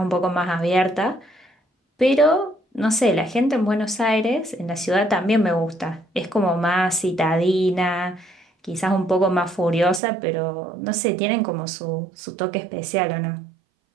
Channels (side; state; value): left; drops out; at 10.0 s